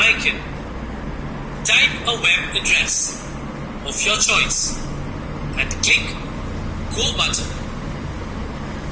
Type a web address of your choice and click Go button.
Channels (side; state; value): both; identical; correlation 1.00